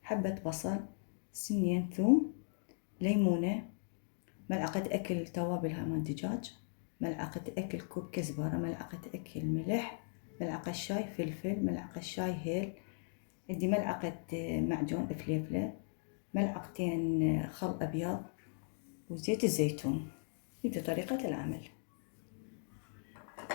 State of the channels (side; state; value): right; silent; digital silence